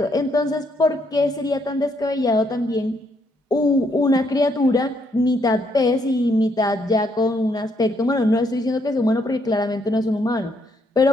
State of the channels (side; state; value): both; normal; correlation 0.73